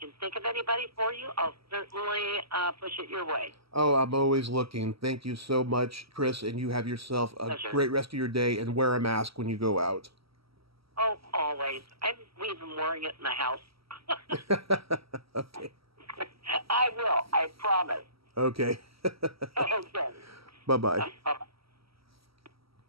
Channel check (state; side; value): late; left; 0.75 ms